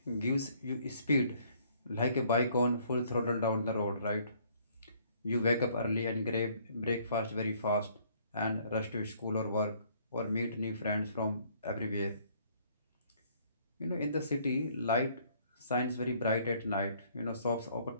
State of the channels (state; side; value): inverted; both; correlation -0.62